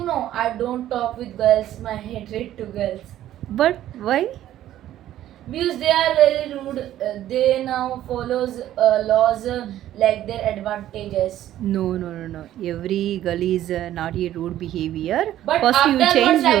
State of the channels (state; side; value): quieter; left; 12.7 dB